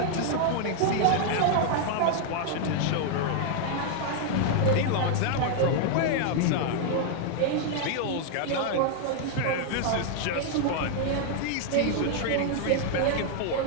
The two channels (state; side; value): different; both; correlation 0.00